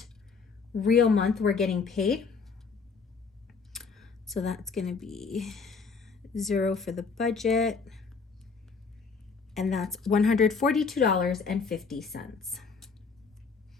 real month we're getting paid. So that's going to be 0 for the budget, and that's $142.50.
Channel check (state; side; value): quieter; right; 5.0 dB